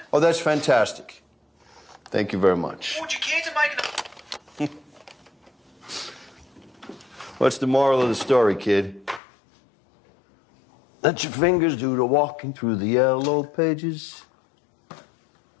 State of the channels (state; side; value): drops out; right; at 9.2 s